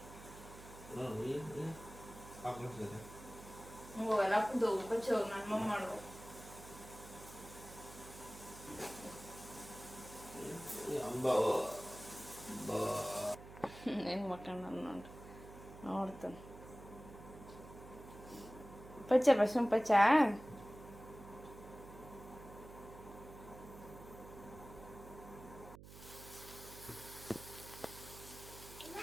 Ako sila. ಹೋಗಲ್ಲ ಹಾಕೊಂಡು ಹೋಗು ಬಚ್ಚಿ ಹೋಗಿ ನಾನು ಮಮ್ಮ ಮಾಡು ಹೆಂಗ್ ಮಕ್ಕಳು ನಾನು ನೋಡ್ತಾನೆ ಪಚ್ಚ ಬಸ್ಸು ಪಚ್ಚ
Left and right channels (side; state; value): right; noise; hum, 16 dB below the sound